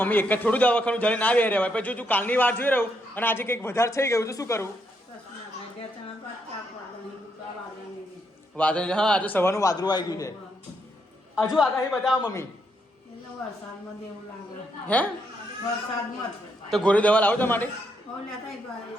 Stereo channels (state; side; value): normal; both; correlation 0.77